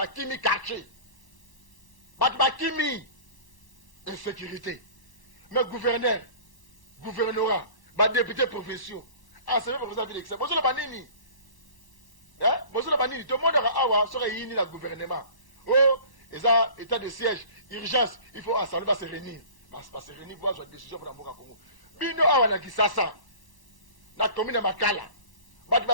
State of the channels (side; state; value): right; late; 1.0 ms